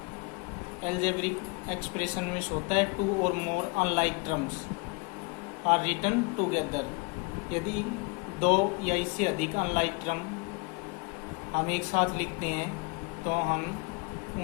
मीन्स होता है 2 or more unlike terms are written together. यदि 2 या इससे अधिक अनलाइक टर्म हम एक साथ लिखते हैं तो हम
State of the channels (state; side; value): quieter; right; 29.8 dB